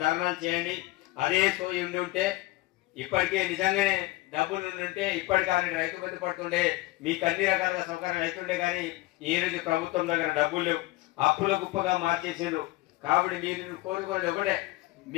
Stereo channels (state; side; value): quieter; right; 19.2 dB